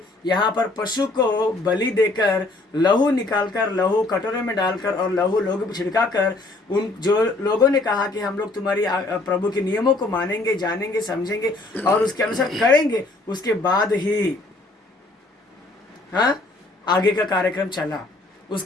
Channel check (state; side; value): quieter; right; 3.0 dB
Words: यहाँ पर पशु को बलि देकर लहू निकालकर, लहू कटोरे में डालकर और लहू लोगों पर छिड़काकर, उन जो लोगों ने कहा कि हम लोग तुम्हारी प्रभु के नियमों को मानेंगे, जानेंगे, समझेंगे और उसके अनुसार करेंगे, उसके बाद ही आगे का कार्यक्रम चला।